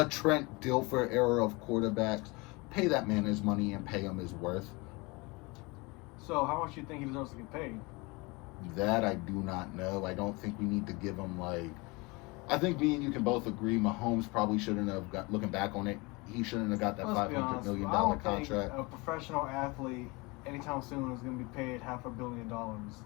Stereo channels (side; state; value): right; quieter; 26.0 dB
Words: Trent Dilfer era of quarterbacks. Pay that man his money and pay him his worth. So how much do you think he deserves to get paid? That I do not know. I don't think we need to give him I think me and you can both agree Mahomes probably shouldn't have got, looking back on it, he shouldn't have got that $500 million contract. I don't think a professional athlete anytime soon is going to be paid $500 million.